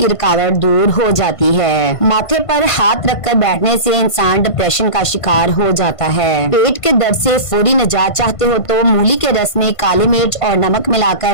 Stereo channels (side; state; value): right; late; 1.5 ms